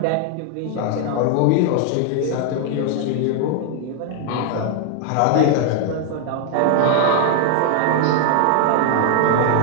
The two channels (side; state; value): both; different; correlation 0.00